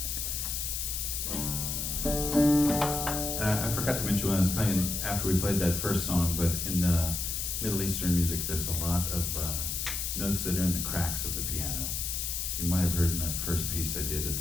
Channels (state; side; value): noise; left; hiss, 2 dB below the sound